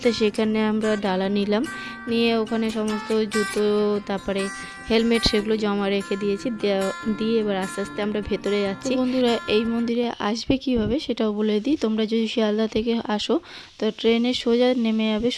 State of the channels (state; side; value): identical; both; correlation 1.00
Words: তো সেখানে আমরা ডালা নিলাম, নিয়ে ওখানে সমস্ত জুতো তারপরে হেলমেট সেগুলো জমা রেখে দিয়েছি, দিয়ে এবার আস্তে আস্তে আমরা ভেতরে যাচ্ছি। বন্ধুরা এই মন্দিরে আসবে কিভাবে সেটাও বলে দিই। তোমরা যদি শিয়ালদা থেকে আসো তো ট্রেনে সোজা নেমে যাবে